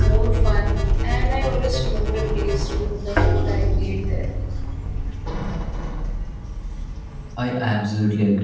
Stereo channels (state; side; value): identical; both; correlation 1.00